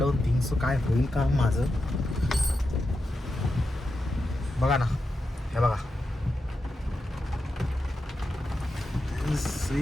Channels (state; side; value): normal; both; correlation 0.88